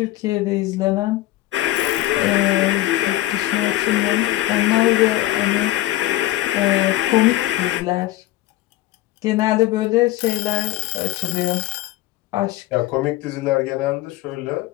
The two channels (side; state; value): right; quieter; 15.8 dB